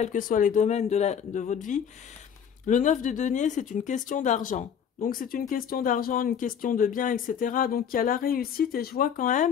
que soient les domaines de votre vie. Le 9 de denier, c'est une question d'argent. Donc, c'est une question d'argent, une question de bien, etc. Donc, il y a la réussite et je vois quand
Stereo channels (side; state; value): right; quieter; 8.0 dB